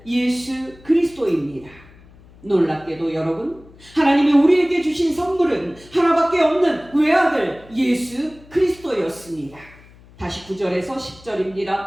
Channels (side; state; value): left; noise; hum, 24 dB below the sound